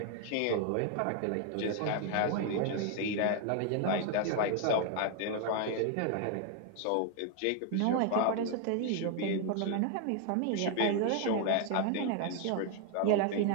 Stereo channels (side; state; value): both; different; correlation 0.00